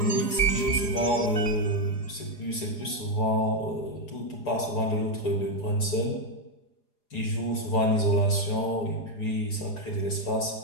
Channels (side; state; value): right; late; 4.8 ms